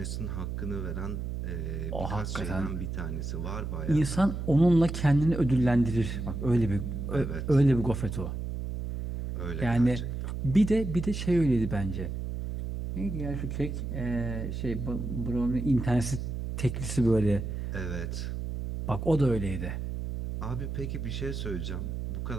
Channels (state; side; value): noise; right; hum, 4 dB below the sound